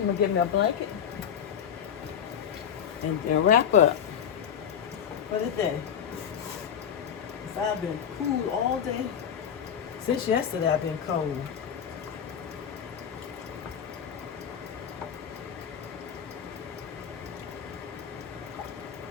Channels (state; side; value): quieter; right; 8.3 dB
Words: gonna get me a blanket and wrap up. for the day. 'Cause I've been cool all day. Since yesterday, I've been cold.